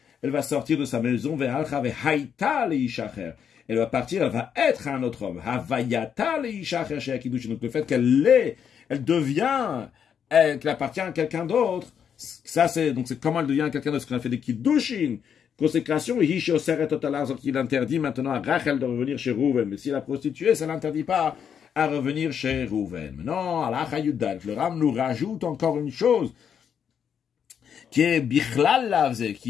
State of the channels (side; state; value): right; quieter; 7.9 dB